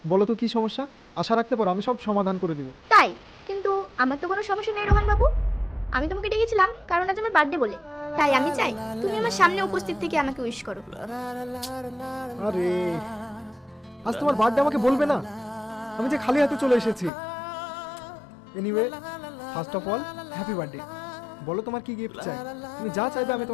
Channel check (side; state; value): right; drops out; at 17.1 s